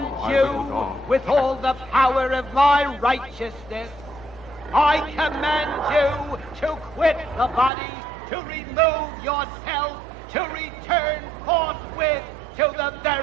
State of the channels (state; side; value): drops out; left; at 7.7 s